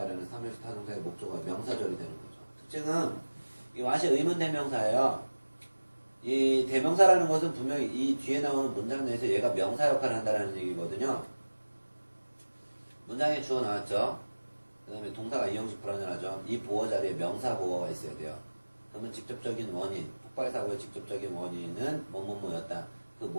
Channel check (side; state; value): both; inverted; correlation -1.00